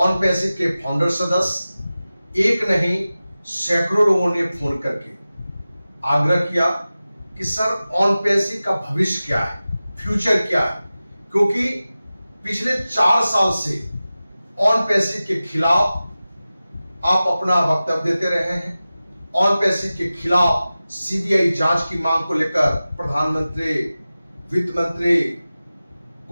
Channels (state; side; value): inverted; both; correlation -0.96